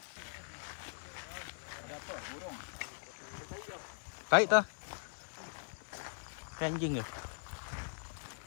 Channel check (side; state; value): right; silent; digital silence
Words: Ada apa? Burung. Baik ta. Kayak anjing ke?